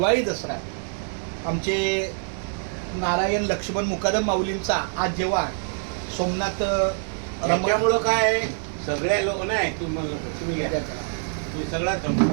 दसरा. आमचे नारायण लक्ष्मण मुकादम माऊलींचा आज जेव्हा सोमनाथ त्यामुळं काय सगळ्या लोक नाही तुम्ही घ्या सगळा.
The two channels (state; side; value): silent; left; 58 dB below the other